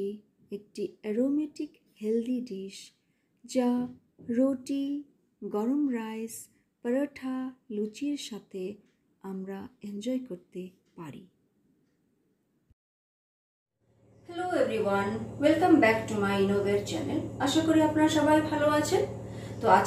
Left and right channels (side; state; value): both; identical; correlation 1.00